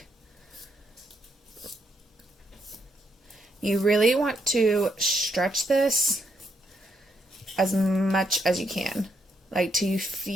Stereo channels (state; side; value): normal; both; correlation 0.77